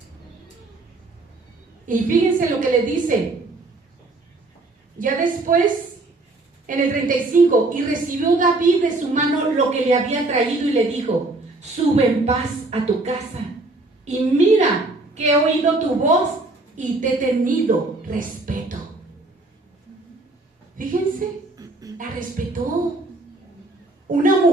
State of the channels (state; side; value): quieter; left; 3.0 dB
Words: Y fíjense lo que le dice. Ya después, en el 35, y recibió David de su mano lo que le había traído y le dijo: sube en paz a tu casa, y mira que he oído tu voz y te he tenido respeto. Fíjense, la respetó. Una